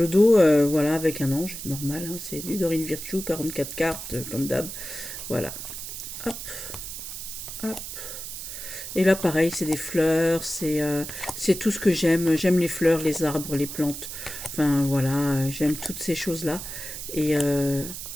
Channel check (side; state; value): right; noise; hiss, 8 dB below the sound